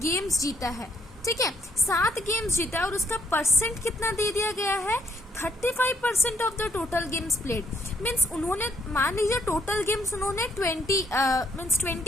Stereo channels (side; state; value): both; normal; correlation 0.70